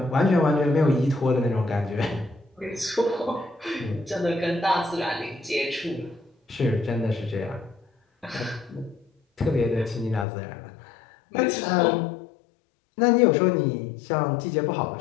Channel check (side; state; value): right; drops out; at 10.2 s